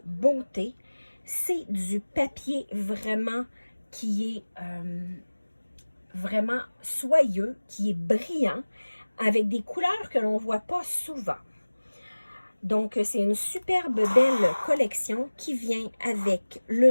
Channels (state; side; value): inverted; both; correlation -1.00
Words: beauté. C'est du papier vraiment qui est vraiment soyeux, qui est brillant, avec des couleurs que l'on ne voit pas souvent. Donc, c'est une superbe belle collection qui vient avec